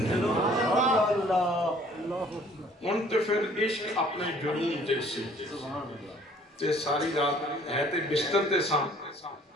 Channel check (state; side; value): normal; both; correlation 0.56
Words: ان تے پھر عشق اپنے جنون دے سے تے ساری رات ہے تے بستر تے ساں